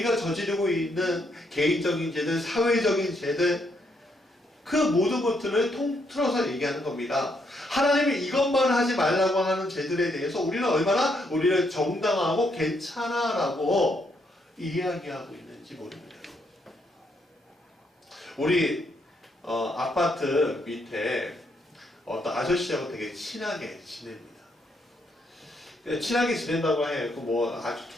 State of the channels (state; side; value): normal; both; correlation 0.75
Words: 저지르고 있는 개인적인 죄들, 사회적인 죄들, 그 모든 것들을 통틀어서 얘기하는 겁니다. 하나님이 이것만 하지 말라고 하는 죄들에 대해서 우리는 얼마나 우리를 정당하고 괜찮아라고 이야기하고 있는지 모릅니다. 우리 아파트 밑에 어떤 아저씨하고 되게 친하게 지냅니다. 친하게 지낸다고 해요. 뭐 아주